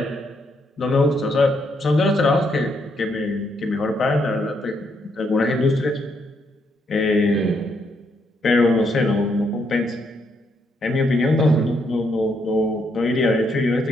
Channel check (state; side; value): normal; both; correlation 0.75